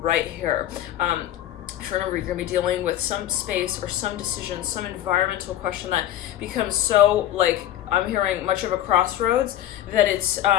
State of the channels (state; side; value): quieter; right; 12.5 dB